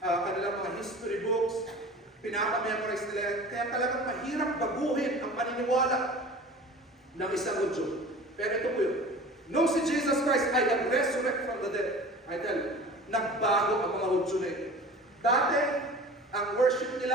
kanilang mga history books, pinapamemorize nila. Kaya talagang mahirap baguhin ang paniniwala ng isang Hudyo. Pero ito po yun. Nung si Jesus Christ ay nag-resurrect from the dead, I tell you, nagbago ang mga Hudyo na ito. Dati, ang worship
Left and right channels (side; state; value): both; normal; correlation 0.40